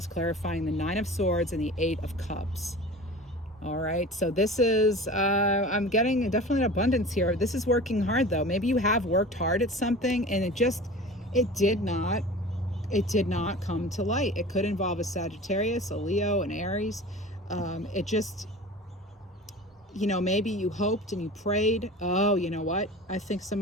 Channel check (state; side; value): normal; both; correlation 0.37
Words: clarifying the 9 of Swords and the 8 of Cups. All right, so this is, I'm getting definitely an abundance here. This is working hard though. Maybe you have worked hard at something and it did not come to light. It could involve a Sagittarius, a Leo, an Aries. It just, you know, maybe you hoped and you prayed. Oh, you know what? I think